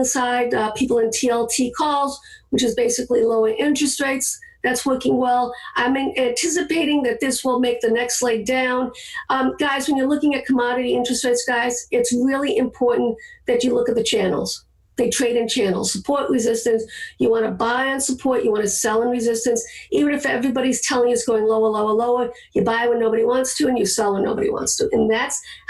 side people in TLT calls, which is basically lower interest rates. That's working well. I'm anticipating that this will make the next leg down. Guys, when you're looking at commodity interest rates, guys, it's really important that you look at the channels. They trade in channels, support, resistance. You want to buy on support. You want to sell in resistance. Even if everybody's telling you it's going lower, lower, lower, you buy when nobody wants to and you sell when nobody wants to. And that's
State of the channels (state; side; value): identical; both; correlation 1.00